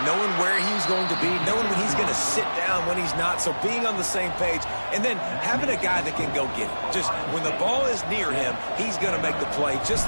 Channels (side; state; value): both; inverted; correlation -1.00